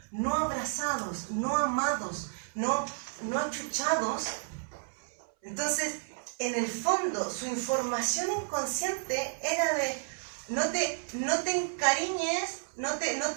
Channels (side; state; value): left; silent; 57 dB below the other